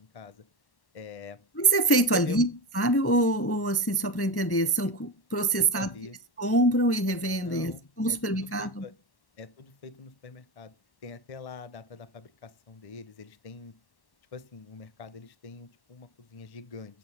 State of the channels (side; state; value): right; late; 1.1 ms